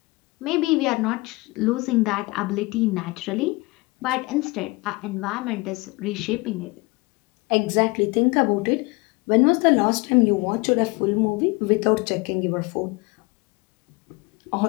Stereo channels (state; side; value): quieter; right; 24.7 dB